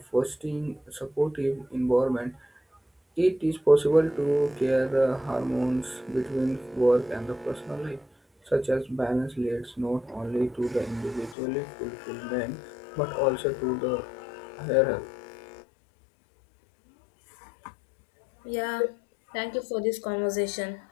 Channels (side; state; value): right; drops out; at 11.4 s